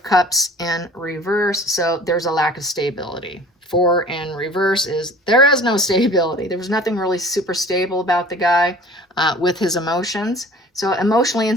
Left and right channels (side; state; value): both; normal; correlation 0.46